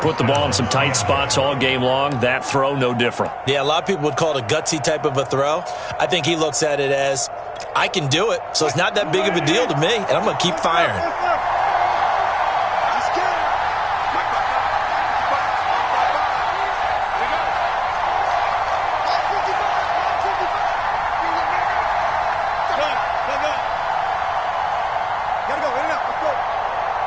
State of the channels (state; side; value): identical; both; correlation 1.00